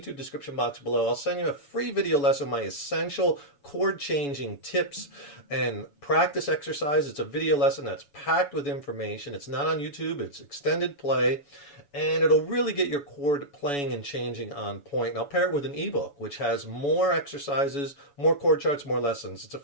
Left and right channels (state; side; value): late; right; 7.0 ms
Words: description box below. I'll send you a free video lesson, my essential chord changing tips and practice exercise. It's a video lesson that's packed with information. It's not on YouTube, it's extended play, and it'll really get your chord playing and changing on point. And I'll pair it with an ebook, which has more exercises, more chord charts, more lessons. It's a